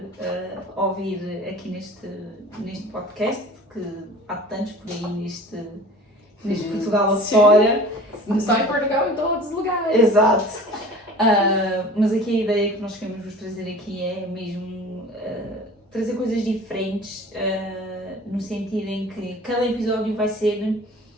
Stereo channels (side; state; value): both; normal; correlation 0.43